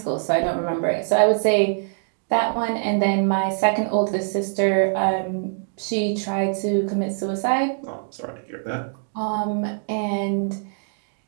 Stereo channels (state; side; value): silent; left; digital silence